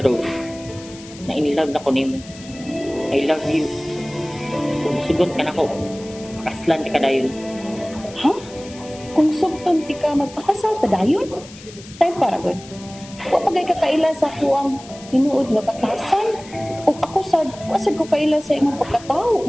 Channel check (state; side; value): noise; left; hiss, 19 dB below the sound